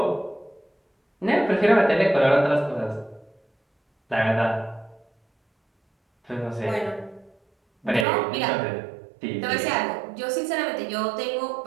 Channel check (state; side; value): drops out; left; at 8.1 s